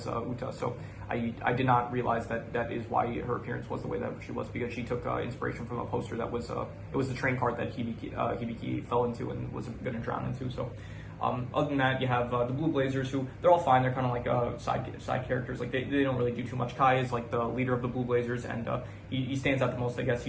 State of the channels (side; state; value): both; identical; correlation 1.00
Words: Uta. So I did not realize that is why her appearance was the way that she was, because she took inspiration from a poster that was it was the train cart that Hibiki fell into and was going to drown into. So. Other than that, you have the Blue Blazers, who they're all fine. They're kind of like side characters. Like they don't really do too much. Kai is like the leader of the Blue Blazers, and he stands out the most. I guess